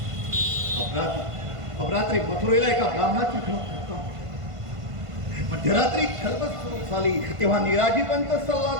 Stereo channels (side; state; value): left; late; 1.5 ms